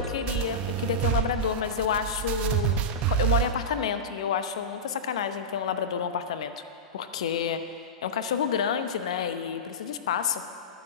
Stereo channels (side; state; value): both; normal; correlation -0.15